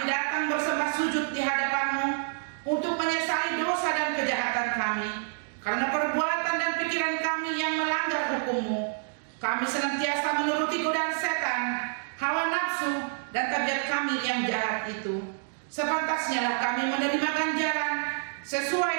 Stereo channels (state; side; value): silent; left; digital silence